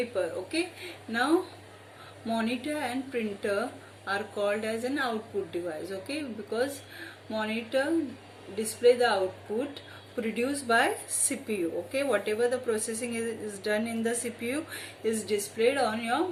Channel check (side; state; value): both; identical; correlation 1.00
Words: Okay, now monitor and printer are called as an output device, okay, because monitor display the output produced by CPU. Okay, whatever the processing is done in the CPU is displayed on your